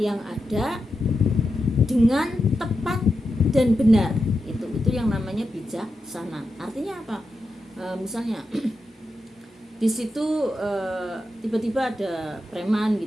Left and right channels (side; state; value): both; normal; correlation 0.88